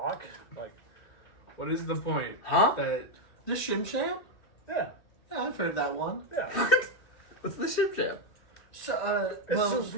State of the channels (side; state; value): right; late; 2.7 ms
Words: Like, What is the point? Huh? That The Shim Sham? yeah. Yeah, I've heard that one. Yeah. What's the ship jam? So, It's well, a